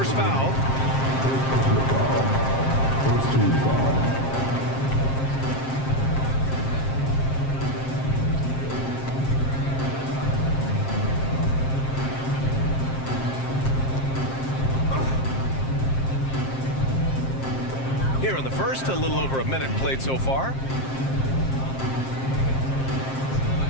foul. First team foul. Here in the first, a little over a minute played so far.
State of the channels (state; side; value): late; right; 7.6 ms